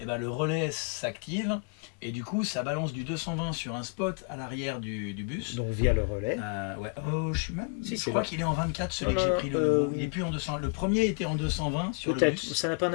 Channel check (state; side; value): quieter; right; 36.0 dB